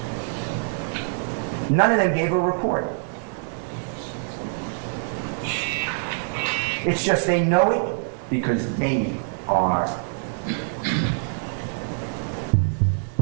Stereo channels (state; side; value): silent; left; digital silence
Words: None of them gave a report. It's just they know it because they are